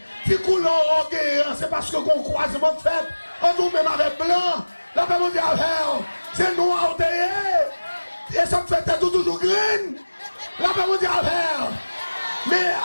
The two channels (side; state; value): both; inverted; correlation -1.00